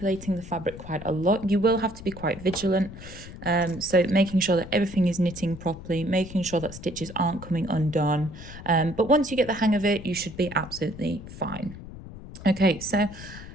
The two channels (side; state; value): left; noise; rumble, 14 dB below the sound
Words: the fabric quite a lot, you will have to be quite vigilant. So making sure that everything is knitting properly, making sure that stitches aren't coming undone. But once you get the hang of it, you should be absolutely fine. Okay, so